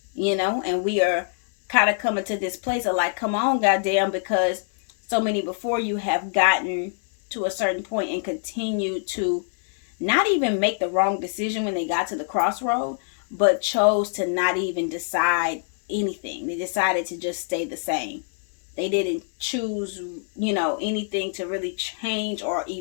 And we are kind of coming to this place of like, come on, goddamn, because so many before you have gotten to a certain point and continue to not even make the wrong decision when they got to the crossroad, but chose to not even decide anything. They decided to just stay the same. They didn't choose, anything to really change or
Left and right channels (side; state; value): right; silent; 62 dB below the other